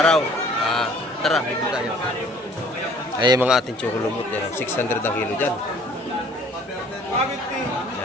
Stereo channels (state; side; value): normal; both; correlation 0.54